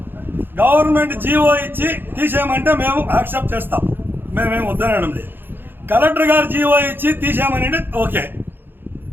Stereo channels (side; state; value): left; late; 0.099 ms